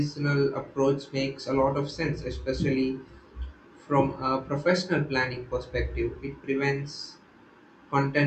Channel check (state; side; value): identical; both; correlation 1.00